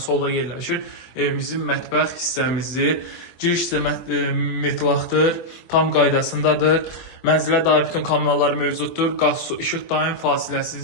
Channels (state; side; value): late; right; 24 ms